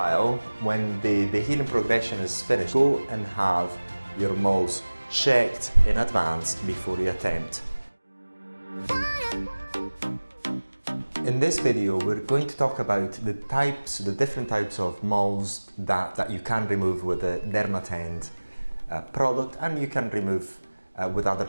when the healing progression is finished, go and have your moles checked in advance before you attempt. In this video, we're going to talk about the different types of moles that you can remove with the Areton product, and you can remove with other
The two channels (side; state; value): both; inverted; correlation -1.00